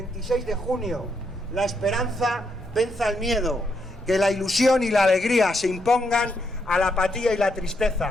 de junio la esperanza venza el miedo, que la ilusión y la alegría se impongan a la apatía y la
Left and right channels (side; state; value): both; normal; correlation 0.78